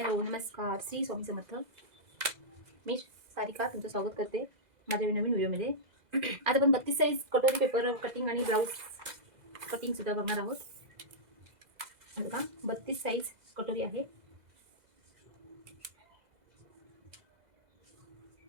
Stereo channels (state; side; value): late; left; 2.0 ms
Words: Hello, नमस्कार. श्री स्वामी समर्थ. मी सारिका तुमचं स्वागत करते माझ्या नवीन व्हिडिओमध्ये. आज आपण 32 साईज कटोरी पेपर कटिंग आणि ब्लाऊज कटिंग सुद्धा बघणार आहोत. बघा, 32 साईज कटोरी आहे.